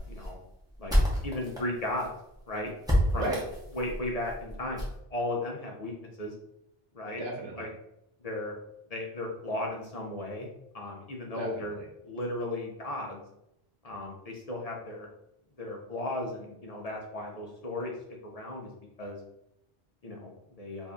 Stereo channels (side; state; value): both; normal; correlation 0.41